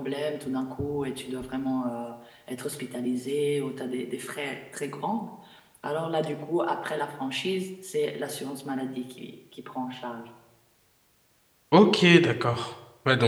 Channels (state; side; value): identical; both; correlation 1.00